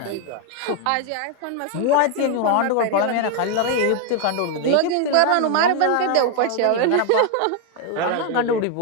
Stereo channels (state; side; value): different; both; correlation 0.00